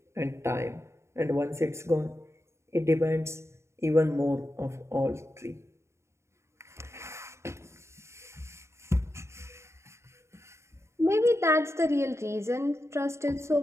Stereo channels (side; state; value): left; late; 0.13 ms